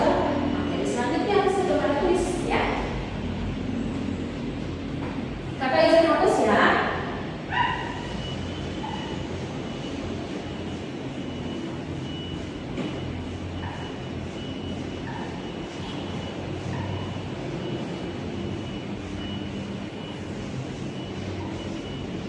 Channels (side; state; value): both; identical; correlation 1.00